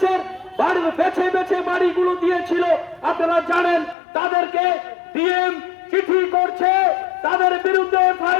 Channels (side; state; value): right; drops out; at 4.0 s